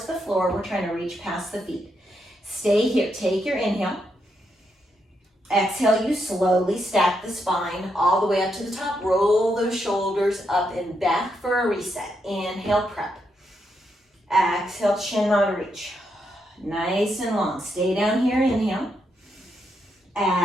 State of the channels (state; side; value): normal; both; correlation 0.80